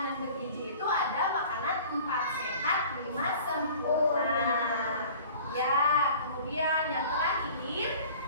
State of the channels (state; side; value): inverted; both; correlation -0.46